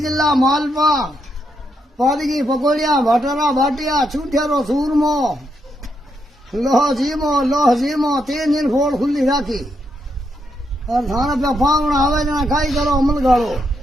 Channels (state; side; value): normal; both; correlation 0.80